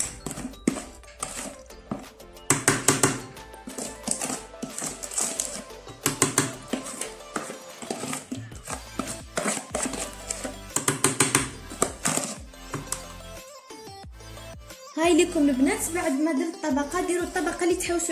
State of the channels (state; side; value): identical; both; correlation 1.00